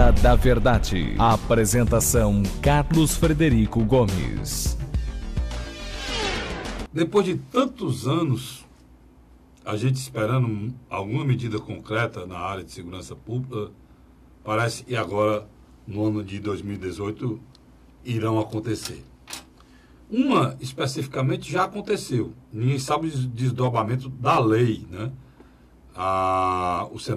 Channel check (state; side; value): identical; both; correlation 1.00